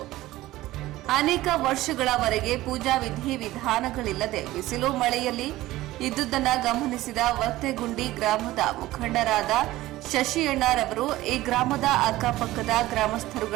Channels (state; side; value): quieter; left; 16.7 dB